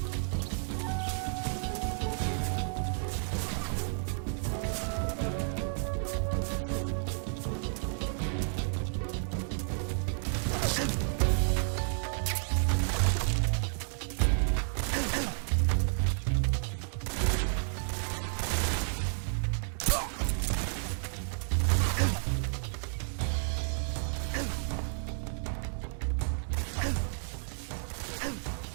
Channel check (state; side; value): silent; left; digital silence